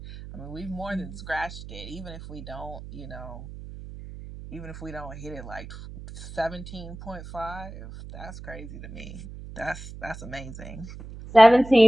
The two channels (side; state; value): right; noise; hum, 13 dB below the sound